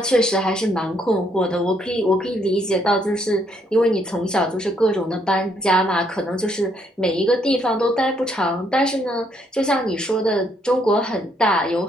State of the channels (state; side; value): normal; both; correlation 0.71